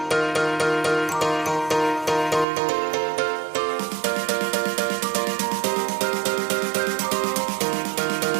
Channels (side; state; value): left; drops out; at 2.5 s